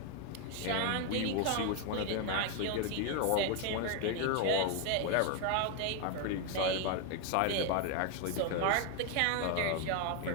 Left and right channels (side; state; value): both; different; correlation 0.01